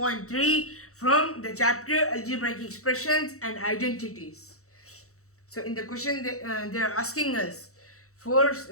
from the chapter Algebraic Expressions and Identities. So in the question they are asking us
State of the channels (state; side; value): late; right; 0.64 ms